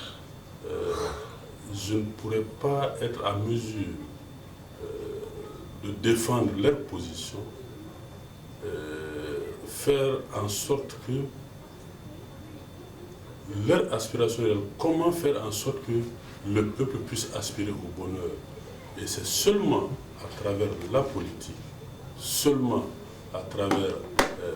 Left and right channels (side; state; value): both; identical; correlation 1.00